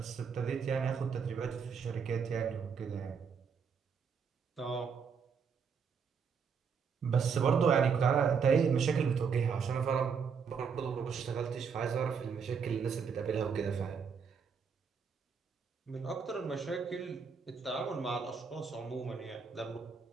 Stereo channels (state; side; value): quieter; left; 6.2 dB